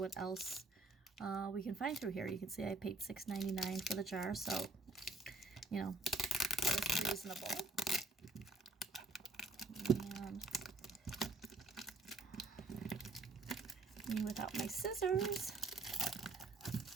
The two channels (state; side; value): quieter; left; 3.1 dB